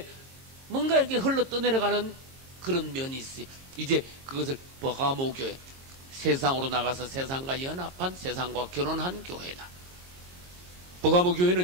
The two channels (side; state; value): left; late; 22 ms